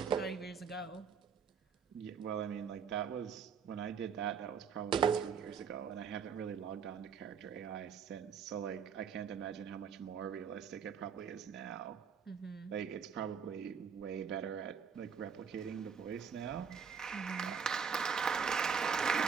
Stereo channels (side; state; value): left; quieter; 6.6 dB